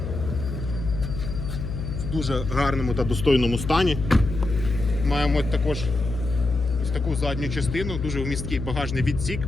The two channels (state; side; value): noise; left; hum, 5 dB below the sound